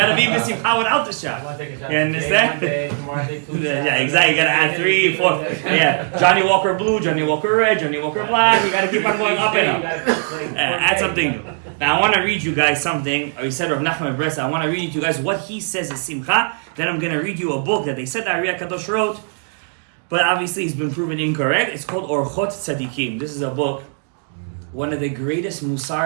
be besimcha without the shot. You understand? Yeah, exactly. You gotta add 3, 4. Yeah, Johnny Walker blue, Johnny Walker red, Johnny Walker black. You gotta keep on going up and up. Add something new. Now I want to read you guys something. We said Rav Nachman Bresa. I want to read you guys what he says is simcha. Then I'm gonna read you a book that they said that Ari Kadosh wrote, but obviously it's been proven incorrect. It's called Orchot Tzadikim. This is a book. One of the greatest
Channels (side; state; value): left; silent; 58 dB below the other